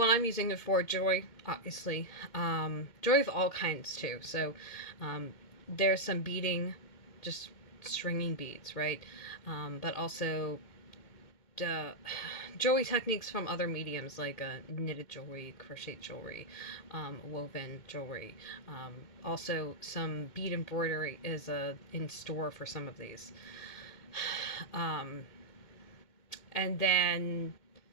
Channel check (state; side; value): late; right; 2.1 ms